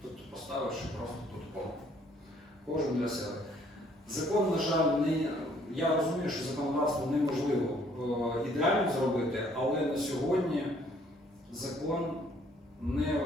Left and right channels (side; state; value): both; normal; correlation 0.62